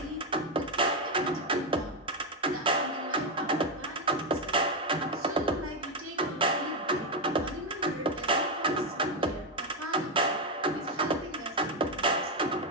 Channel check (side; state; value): both; normal; correlation 0.06